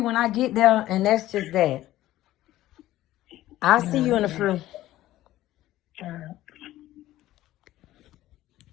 when I get there. And that's just that. I'll see you in the fruit.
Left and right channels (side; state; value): right; quieter; 15.0 dB